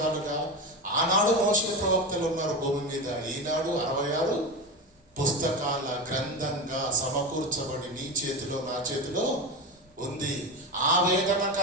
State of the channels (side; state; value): both; normal; correlation 0.21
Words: ఆనాడు మోషే ప్రవక్తలు ఉన్నారు భూమి మీద, ఈనాడు 66 పుస్తకాల గ్రంథంగా సమకూర్చబడి నీ చేతిలో నా చేతిలో ఉంది. ఆ